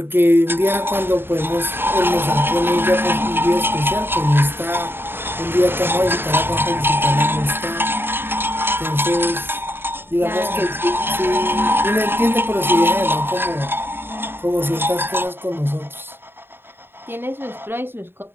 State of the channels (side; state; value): left; late; 0.10 ms